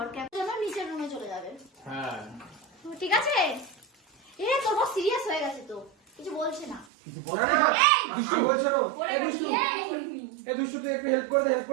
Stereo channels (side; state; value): left; drops out; at 6.9 s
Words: নিচের রুমে চলে যাবে। হ্যাঁ ঠিক আছে। এ তোর বস সিরিয়াস হয়ে গেছে, তো কিছু বলছে না। কিছু বলে না, কিছু বলছে না। এই দুষ্টু তুই একটু হেল্প করে দে